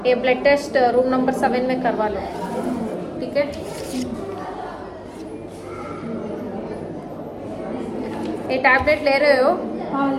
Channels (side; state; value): both; identical; correlation 1.00